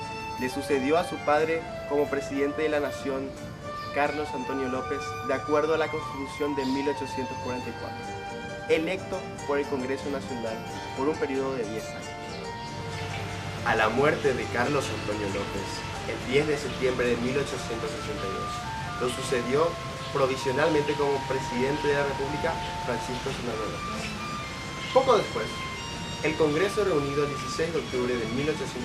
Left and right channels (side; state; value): both; identical; correlation 1.00